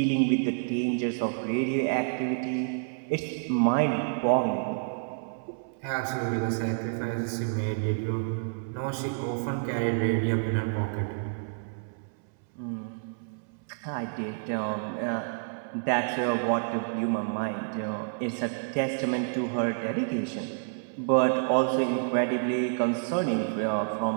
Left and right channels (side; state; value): left; silent; 59 dB below the other